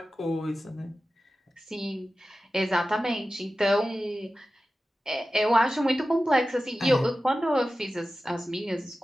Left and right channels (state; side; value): normal; both; correlation 0.94